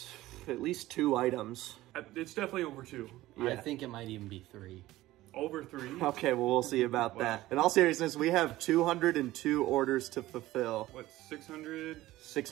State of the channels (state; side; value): quieter; left; 16.6 dB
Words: at least 2 items. It's definitely over 2. Yeah. I think it might even be 3. Over 3? Okay, well, we'll see about that. In all seriousness, we have 202 orders to fulfill. What, 600?